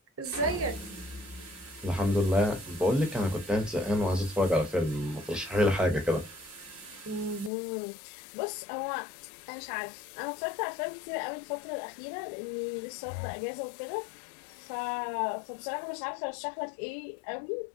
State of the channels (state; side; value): drops out; right; at 7.5 s